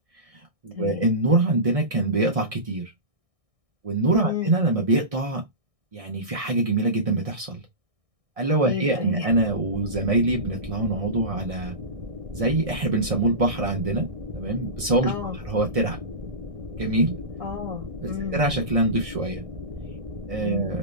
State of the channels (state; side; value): late; left; 1.6 ms